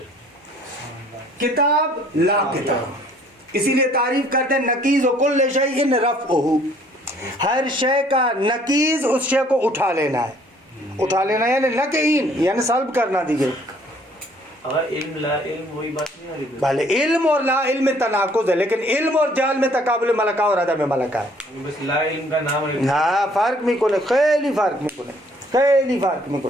کتاب لا کتاب. اسی لیے تعریف کرتے ہیں نقیض و کل شیء رفعہ, ہر شے کا نقیض اس شے کو اٹھا لینا ہے. اٹھا لینا یعنی لقین یعنی سلب کرنا. دیجیے علم لا علم وہی بات نہیں آ رہی. بھلے علم اور لا علم میں تناقض ہے لیکن علم اور جہل میں تقابل ملکہ اور عدم ملکہ ہے. بس لا علم کا نام ہے. ہاں فرق میں کون ہے, خیلی فرق میں کون ہے, خیلی فرق میں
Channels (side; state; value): both; normal; correlation 0.59